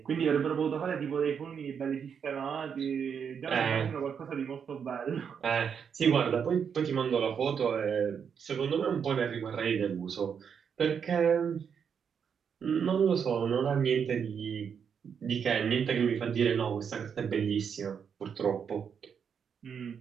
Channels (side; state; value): left; quieter; 7.1 dB